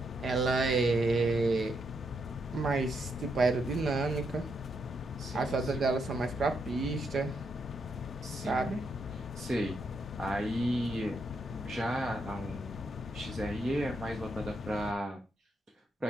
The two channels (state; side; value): normal; both; correlation 0.79